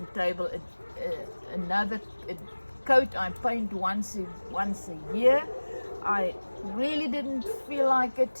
table another coat. I paint once a year. I really didn't feel like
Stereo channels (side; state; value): both; inverted; correlation -1.00